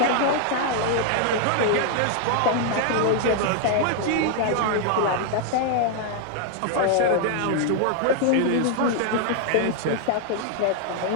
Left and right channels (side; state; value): both; different; correlation 0.00